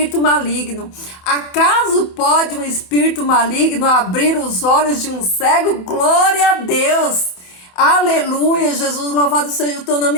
maligno. Acaso pode um espírito maligno abrir os olhos de um cego? Glória a Deus! Aleluia! Jesus, louvado seja o teu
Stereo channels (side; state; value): right; late; 28 ms